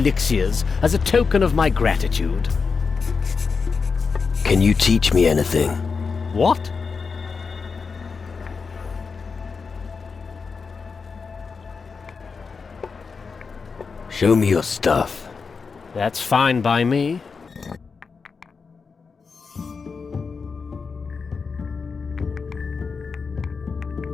as a token of my gratitude. Can you teach me anything? What? Show me your stuff. That's fine by me.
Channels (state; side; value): quieter; right; 5.1 dB